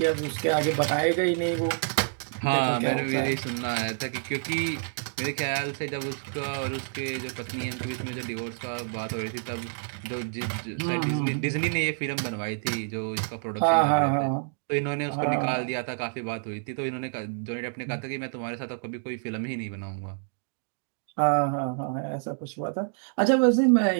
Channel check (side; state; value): left; silent; digital silence